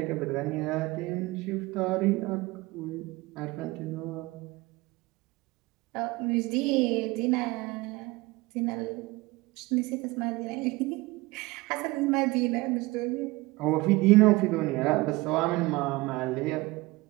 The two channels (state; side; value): quieter; left; 21.6 dB